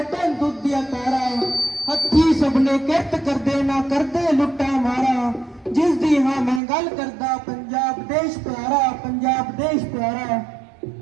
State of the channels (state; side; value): drops out; left; at 6.6 s